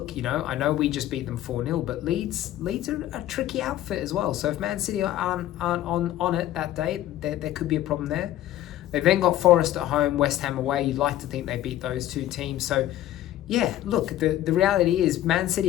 I know we just beat them 4-0, but Leeds are a tricky outfit as well. So if Man City aren't on it that day, there could be a problem there. They've then got Forest at home, West Ham away. You'd like to think they beat those two teams. So, yeah, look, the reality is Man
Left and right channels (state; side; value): quieter; right; 13.3 dB